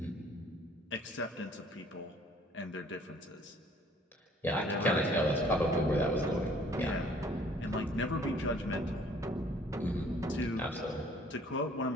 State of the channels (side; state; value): both; normal; correlation 0.57